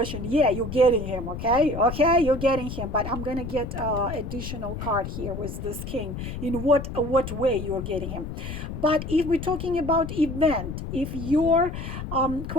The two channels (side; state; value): left; noise; rumble, 7 dB below the sound